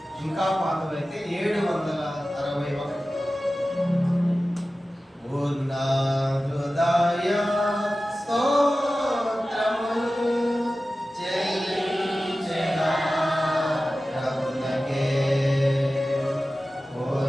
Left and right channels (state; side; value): normal; both; correlation 0.95